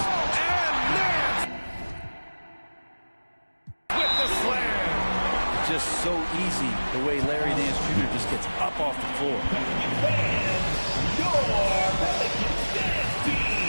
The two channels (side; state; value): both; inverted; correlation -1.00